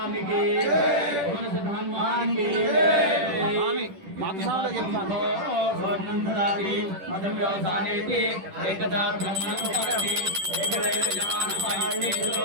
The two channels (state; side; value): late; left; 10 ms